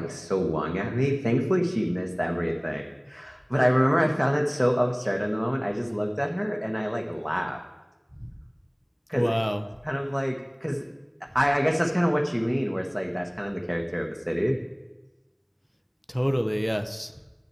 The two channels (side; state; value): both; identical; correlation 1.00